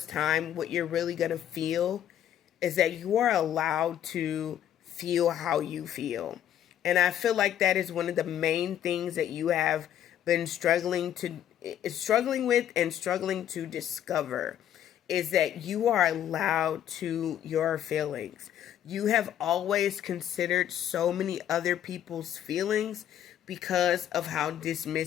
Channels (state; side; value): quieter; right; 10.7 dB